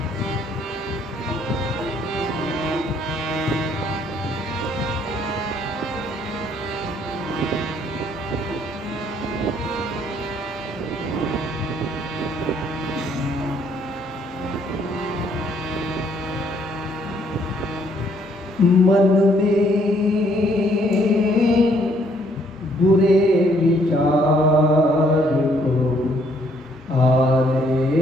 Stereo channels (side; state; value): both; normal; correlation 0.66